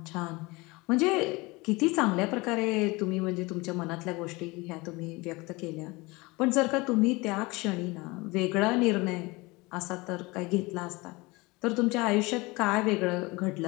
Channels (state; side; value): quieter; right; 23.8 dB